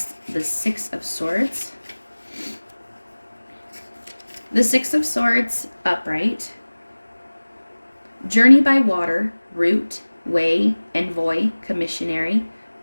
the Six of Swords. The Six of Swords upright. Journey by water, route, way, envoy, commissionary,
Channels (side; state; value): both; inverted; correlation -1.00